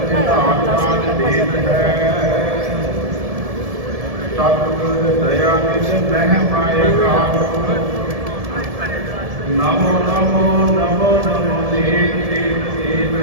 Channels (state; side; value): late; left; 1.7 ms